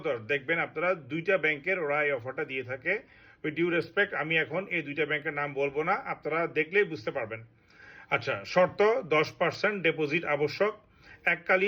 দেখবেন আপনারা দুইটা ব্যাংকের ওরা এই অফারটা দিয়ে থাকে। উইথ ডিউ রেসপেক্ট, আমি এখন এই দুইটা ব্যাংকের নাম বলবো না, আপনারা দেখলেই বুঝতে পারবেন। আচ্ছা, শর্ত 10% ডিপোজিট আবশ্যক,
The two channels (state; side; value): identical; both; correlation 1.00